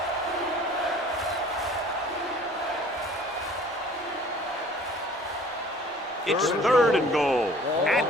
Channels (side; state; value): both; normal; correlation 0.50